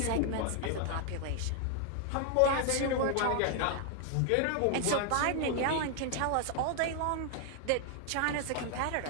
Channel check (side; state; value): both; different; correlation 0.00